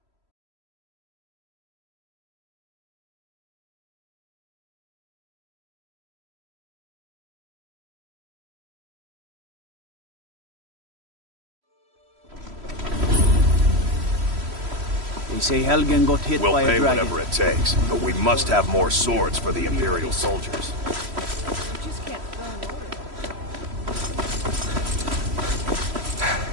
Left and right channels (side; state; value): left; late; 3.1 ms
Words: They say Helgen got hit We'll by a pay dragon. whatever it takes, but we must have more swords for the Imperial soldiers.